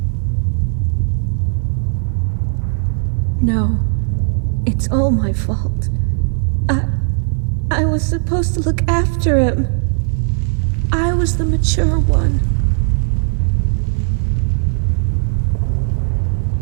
No, it's all my fault. I was supposed to look after him. I was the mature one.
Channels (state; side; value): silent; left; 65 dB below the other